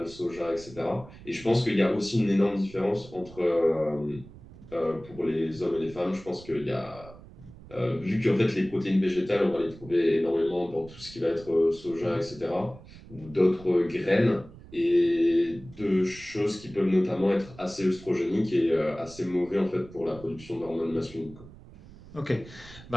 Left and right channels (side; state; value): right; noise; rumble, 19 dB below the sound